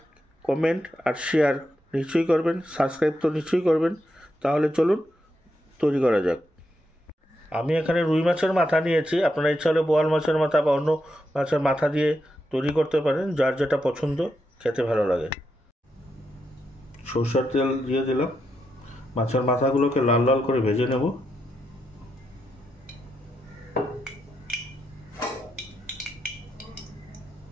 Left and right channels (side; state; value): both; normal; correlation 0.83